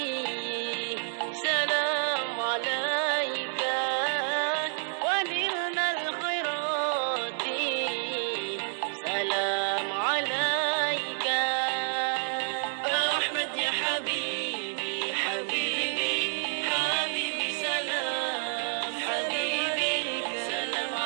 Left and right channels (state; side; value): silent; left; digital silence